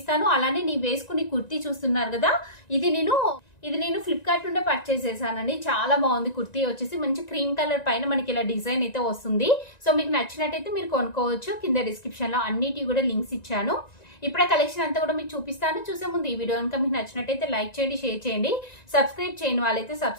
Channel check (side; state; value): right; late; 1.9 ms